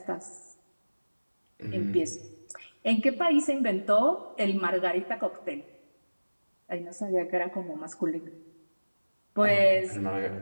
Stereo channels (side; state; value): both; inverted; correlation -1.00